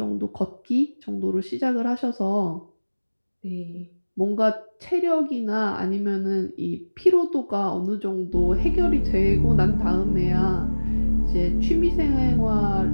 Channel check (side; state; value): both; inverted; correlation -1.00